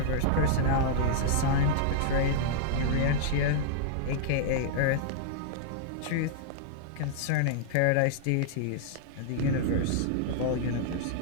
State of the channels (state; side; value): different; both; correlation -0.01